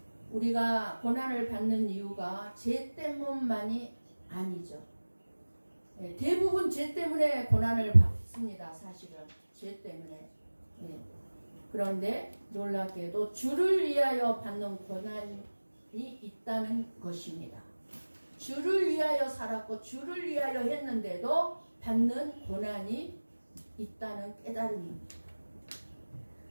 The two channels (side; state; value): both; inverted; correlation -1.00